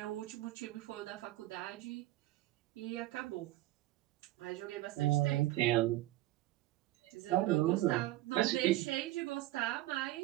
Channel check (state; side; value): quieter; left; 16.7 dB